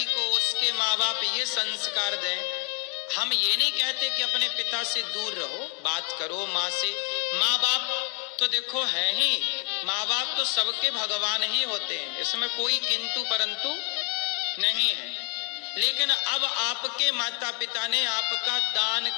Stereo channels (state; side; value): quieter; right; 39.5 dB